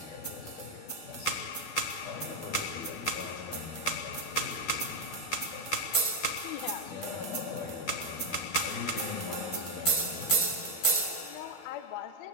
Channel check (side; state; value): right; late; 12 ms